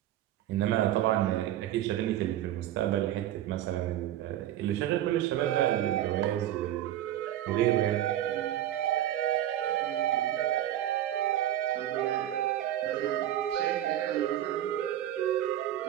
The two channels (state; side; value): quieter; left; 12.6 dB